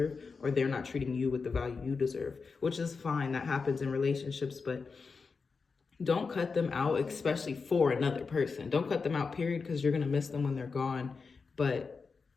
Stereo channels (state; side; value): quieter; right; 4.8 dB